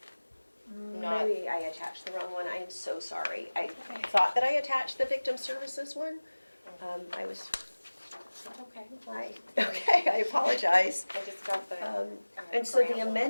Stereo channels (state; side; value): inverted; both; correlation -1.00